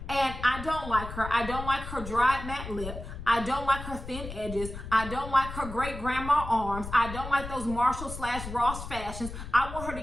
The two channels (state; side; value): noise; left; rumble, 9 dB below the sound